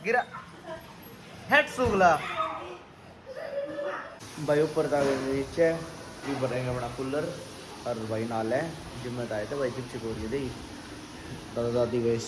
गिरा हेड सुगला भाई ऊपर था नीचे ये बनाएंगे अपना कूलर और भाई नाल है जिम में आए थे भाई चिप चिप हो रही थी दादा दादी गए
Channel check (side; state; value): both; identical; correlation 1.00